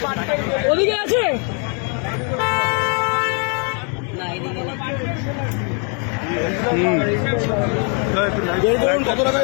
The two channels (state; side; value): quieter; right; 38.6 dB